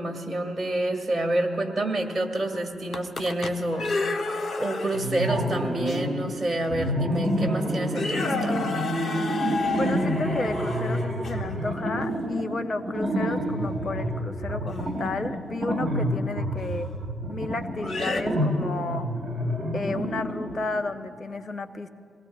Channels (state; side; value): normal; both; correlation 0.75